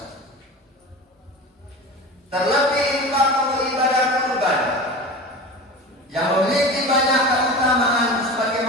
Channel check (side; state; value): both; normal; correlation 0.32